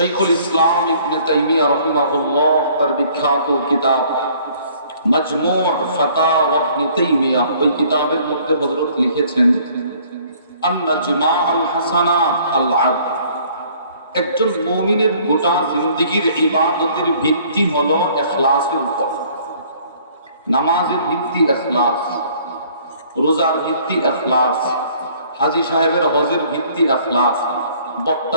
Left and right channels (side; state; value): both; inverted; correlation -0.58